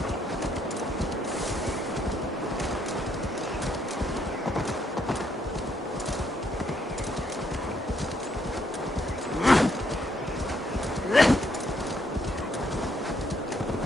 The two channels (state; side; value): normal; both; correlation 0.72